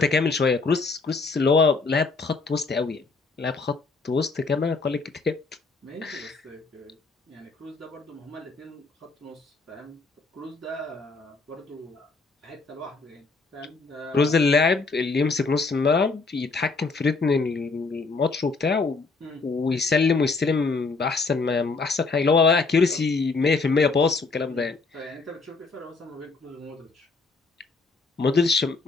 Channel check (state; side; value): quieter; right; 4.0 dB